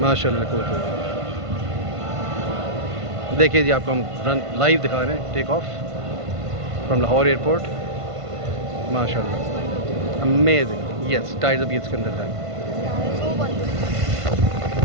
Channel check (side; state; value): left; late; 1.5 ms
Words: माशाल्लाह cool. देखिए जी, आपको हम रन लाइव दिखा रहे हैं, take off from Lahore airport. माशाल्लाह अमेजिंग। यस, टाइर्स अभी इसके अंदर है।